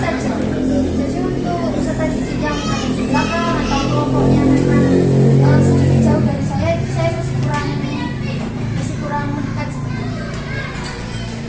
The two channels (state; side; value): identical; both; correlation 1.00